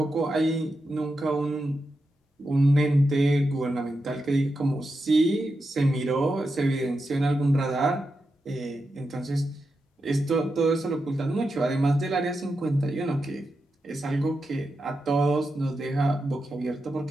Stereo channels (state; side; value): normal; both; correlation 0.88